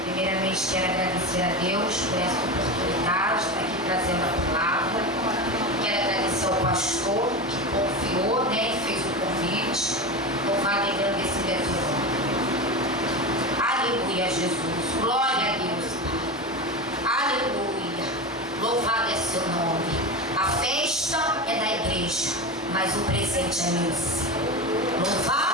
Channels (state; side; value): normal; both; correlation 0.22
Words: Primeiramente quero agradecer a Deus por essa oportunidade de estar aqui trazendo a palavra. Quero agradecer ao pastor que confiou, né, e fez o convite. Louvado e agradecido é teu nome. Aleluia, Jesus. Glória a Deus. Aleluia. Louvado é seu nome. A festa é da igreja, mas o presente é meu.